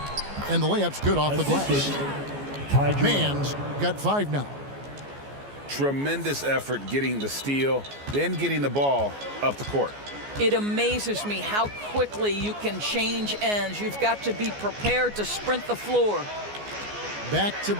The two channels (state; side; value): late; left; 14 ms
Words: And the layup's good off the glass. Mann's got 5 now. Tremendous effort getting the steal, then getting the ball up the court. It amazes me how quickly you can change ends. You've got to be prepared to sprint the floor. Back to